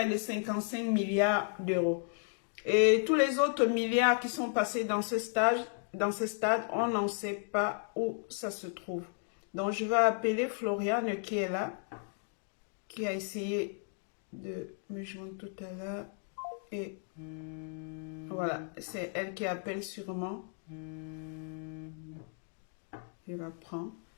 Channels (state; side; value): silent; right; 55 dB below the other